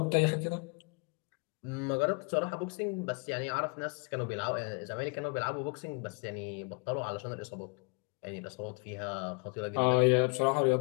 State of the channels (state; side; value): quieter; right; 33.3 dB